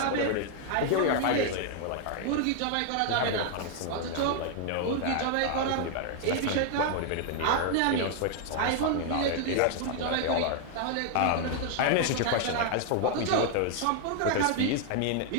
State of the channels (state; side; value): different; both; correlation 0.00